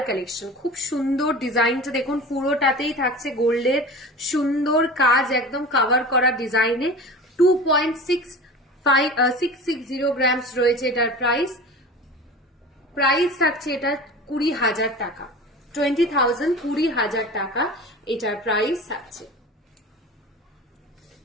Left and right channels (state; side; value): normal; both; correlation 0.35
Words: কালেকশন, খুব সুন্দর ডিজাইনটা দেখুন, পুরোটাতেই থাকছে গোল্ডের সুন্দর কাজ, একদম কভার করা ডিজাইনে। 2.660 গ্রামস রয়েছে এটার প্রাইস। প্রাইস থাকছে এটা 20,000 টাকা, 20,000, 20,000 টাকা এটার প্রাইস থাকছে,